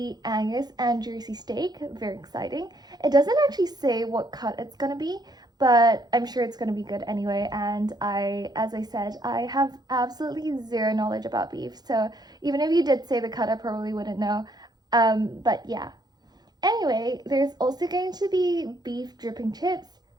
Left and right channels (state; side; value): late; left; 0.20 ms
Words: Angus and Jersey steak, very exciting. It doesn't actually say what cut it's going to be, but I'm sure it's going to be good anyway, and as I said, I have absolutely zero knowledge about beef, so even if you did say the cut, I probably wouldn't know, but yeah. Anyway, there's also going to be beef dripping chips,